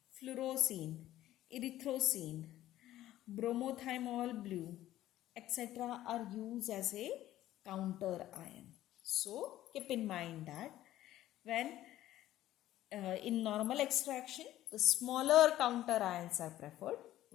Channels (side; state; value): right; quieter; 13.9 dB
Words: fluorosine, erythrosine, bromothymol blue, etc. are used as a counter ion. So keep in mind that when in normal extraction, the smaller counter ions are preferred,